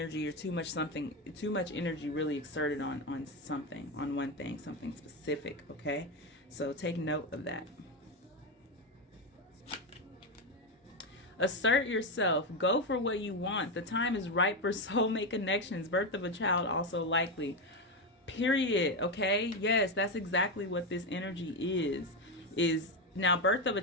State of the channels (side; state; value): both; normal; correlation 0.11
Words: or too much energy really exerted on something, on one thing, something specific, okay? So take note of that. Assert yourself. Go for what you want. The time is ripe for soulmate connections. Birth of a child also likely. Period. Okay? Yes, that's exactly what this energy is now birth of a